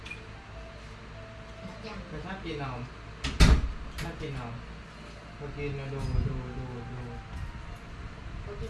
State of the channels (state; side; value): identical; both; correlation 1.00